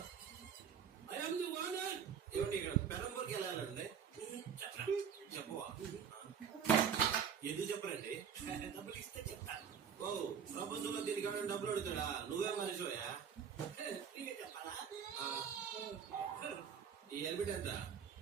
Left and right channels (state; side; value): quieter; left; 7.5 dB